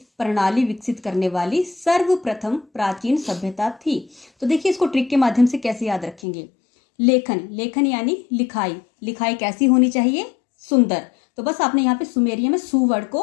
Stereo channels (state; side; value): drops out; right; at 6.2 s